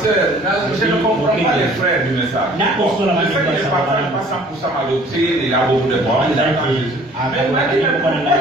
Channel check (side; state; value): both; normal; correlation 0.53